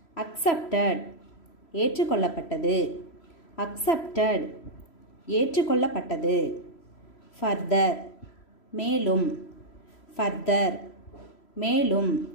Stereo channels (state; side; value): late; right; 3.0 ms